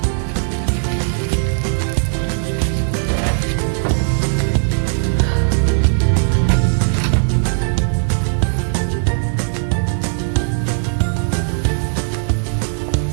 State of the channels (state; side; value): silent; left; digital silence